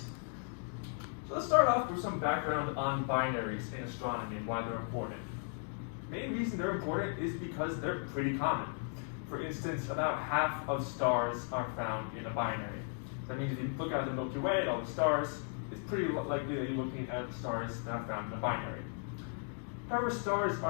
So let's start off with some background on binaries in astronomy and why they're important. The main reason they're important is because they're pretty common. For instance, about half of stars are found in a binary. That means if you look at the Milky Way, at all the stars, it's pretty likely that you're looking at stars that are found in a binary. However, stars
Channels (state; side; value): silent; right; 54 dB below the other